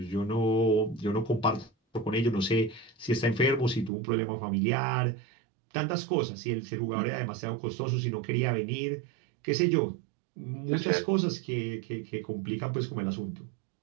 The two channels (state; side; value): drops out; left; at 3.9 s